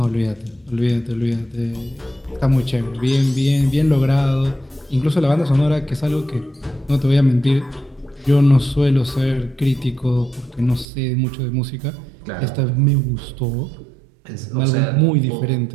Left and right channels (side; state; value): left; drops out; at 10.9 s